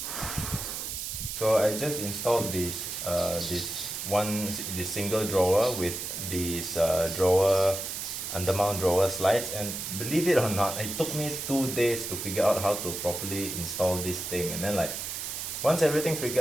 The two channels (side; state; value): right; noise; hiss, 5 dB below the sound